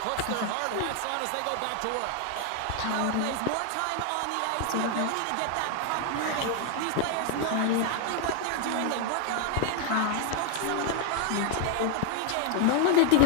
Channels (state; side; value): different; both; correlation 0.00